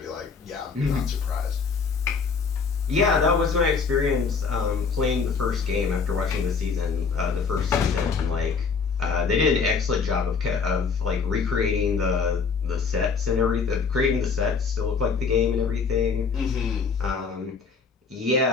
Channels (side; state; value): right; quieter; 5.3 dB